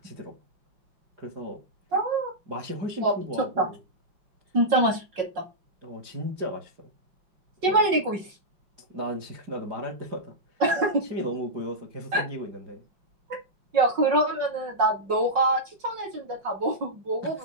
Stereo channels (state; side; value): late; left; 5.5 ms